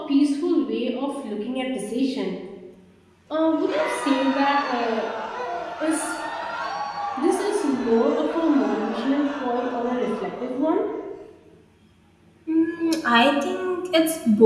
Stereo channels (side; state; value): both; identical; correlation 1.00